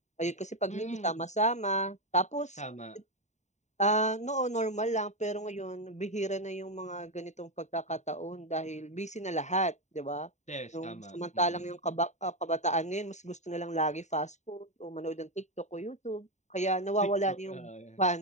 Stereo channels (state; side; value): late; right; 0.34 ms